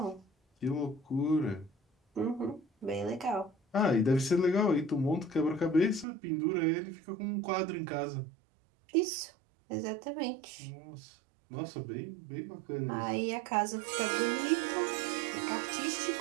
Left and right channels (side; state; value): left; drops out; at 6.1 s